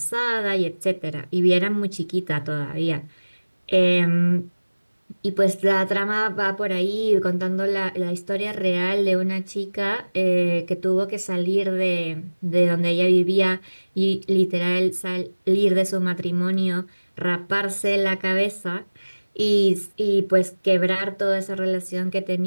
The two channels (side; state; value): both; inverted; correlation -1.00